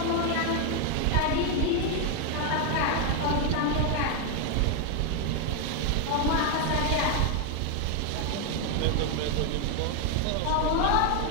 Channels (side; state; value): both; different; correlation 0.01